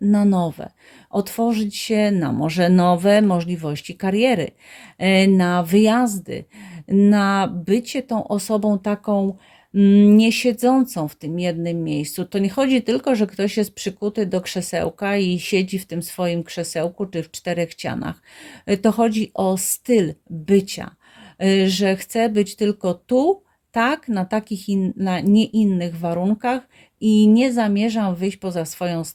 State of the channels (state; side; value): identical; both; correlation 1.00